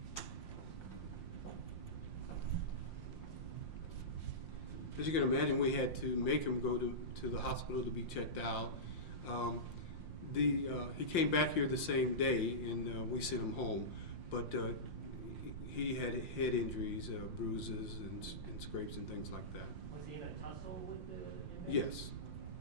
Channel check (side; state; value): right; late; 5.7 ms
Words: now? As you can imagine, we had to make him go to the hospital to be checked out. He came back here the same day, and we sent him home. But he had head injuries, bruises, and scrapes and things like that. Was he in a tussle with the inmates?